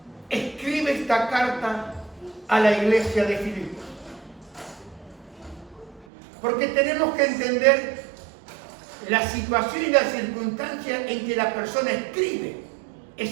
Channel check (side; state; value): left; drops out; at 6.1 s